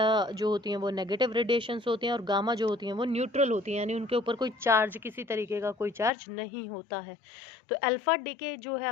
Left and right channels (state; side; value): drops out; right; at 6.1 s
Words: जो होती हैं वो नेगेटिव रेडिएशंस होती हैं, और गामा जो होती हैं वो न्यूट्रल होती हैं, यानी उनके ऊपर कोई चार्ज, किसी तरीके का कोई चार्ज नहीं होता है। तो अल्फ़ा डीके जो है